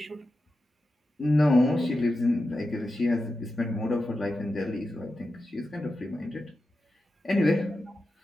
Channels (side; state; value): both; normal; correlation 0.91